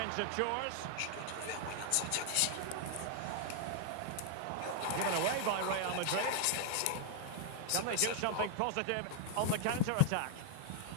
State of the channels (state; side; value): different; both; correlation 0.00